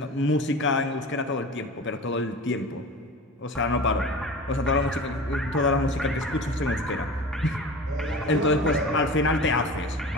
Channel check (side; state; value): both; normal; correlation 0.35